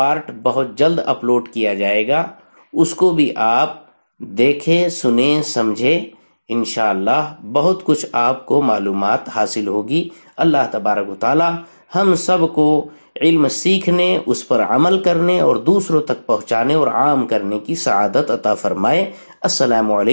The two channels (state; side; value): inverted; both; correlation -1.00